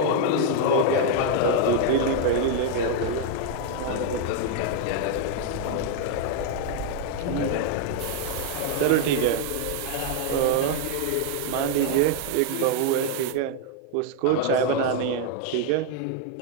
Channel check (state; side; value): different; both; correlation 0.00